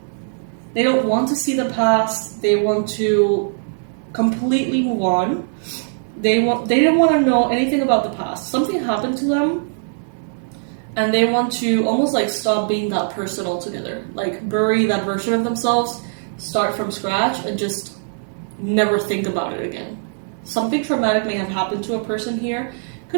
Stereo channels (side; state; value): left; silent; digital silence